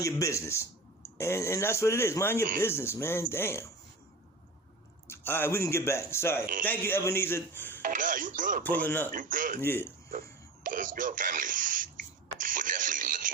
your business. And that's what it is. Mind your business, man. Damn. All right, we can get back. Sorry. Thank you, Ebenezer. Nah, you good, bro. Pulling up. You good. Yeah. Let's go, family. We're definitely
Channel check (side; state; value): left; quieter; 3.1 dB